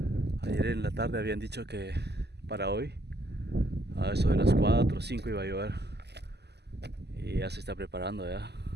Ayer en la tarde habían dicho que para hoy, a eso de las 4 o 5 iba a llover. Y ya se está preparando ya.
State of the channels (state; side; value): late; left; 0.49 ms